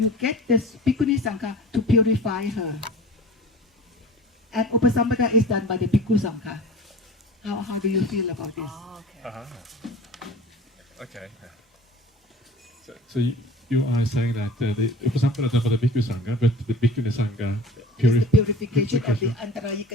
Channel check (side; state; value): both; normal; correlation 0.41